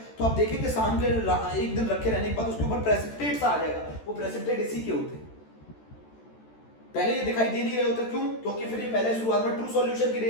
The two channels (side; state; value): right; late; 14 ms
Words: तो आप देखेंगे शाम के एक दिन रखे रहने के बाद उसके ऊपर प्रेसिपिटेट सा आ जाएगा। वो प्रेसिपिटेट इसी के होते हैं, पहले ये दिखाई दे नहीं रहे होते। क्यों? क्योंकि फिर ये पहले शुरुआत में ट्रू सॉल्यूशन की